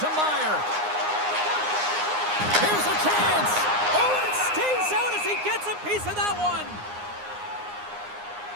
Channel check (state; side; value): late; left; 9.7 ms